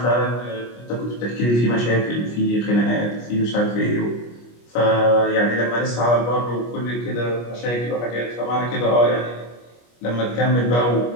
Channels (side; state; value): right; late; 25 ms